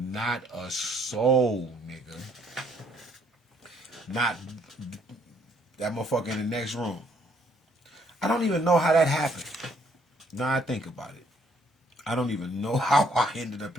a soul, nigga. Not that motherfucker in the next room. I don't even know how that happened. Now I think about it. I don't even know how I ended up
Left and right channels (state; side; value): normal; both; correlation 0.66